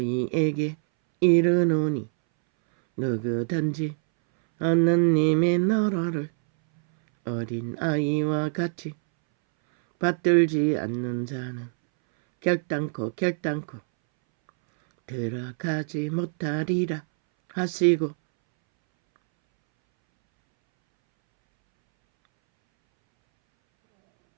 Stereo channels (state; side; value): silent; left; 62 dB below the other